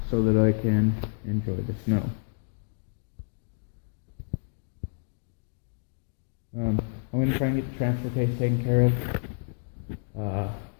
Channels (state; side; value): silent; right; digital silence